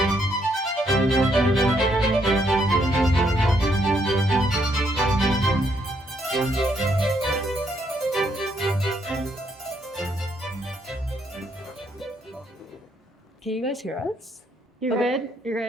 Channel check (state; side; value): normal; both; correlation 0.73